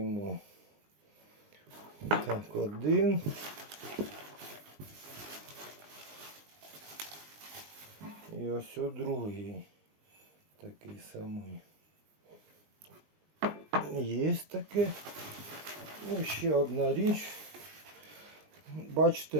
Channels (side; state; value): left; late; 19 ms